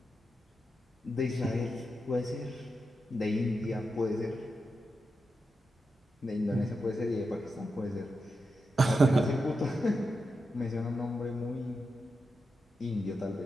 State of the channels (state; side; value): normal; both; correlation 0.88